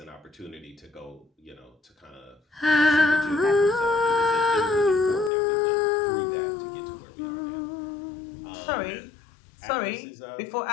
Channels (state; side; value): drops out; right; at 5.3 s